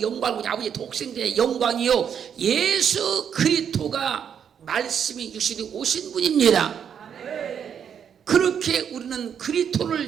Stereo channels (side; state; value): left; quieter; 8.0 dB